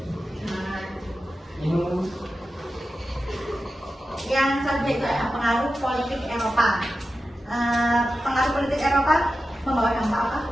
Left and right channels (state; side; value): normal; both; correlation 0.92